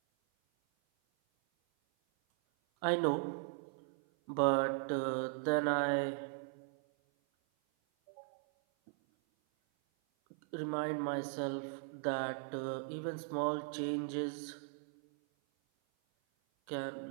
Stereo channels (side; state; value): left; silent; 52 dB below the other